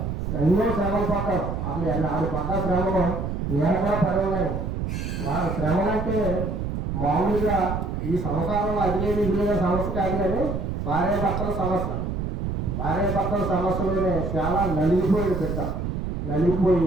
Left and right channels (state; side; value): noise; right; rumble, 3 dB below the sound